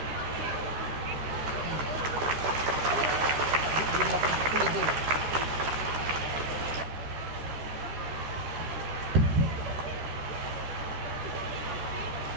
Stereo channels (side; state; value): left; late; 14 ms